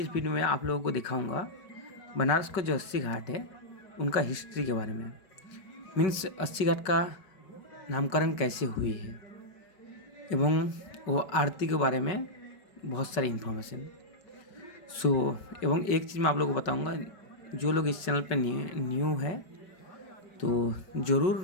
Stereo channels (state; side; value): late; right; 5.3 ms